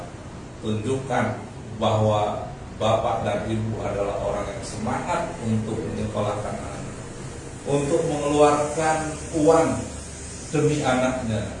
tunjukkan bahwa Bapak dan Ibu adalah orang yang semangat untuk menyekolahkan anak, untuk mengeluarkan uang demi anaknya.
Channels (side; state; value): both; identical; correlation 1.00